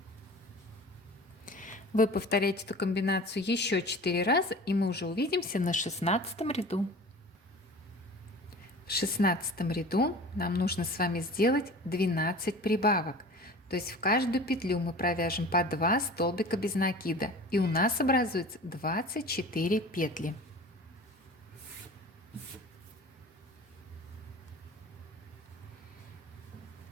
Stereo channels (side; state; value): both; normal; correlation 0.40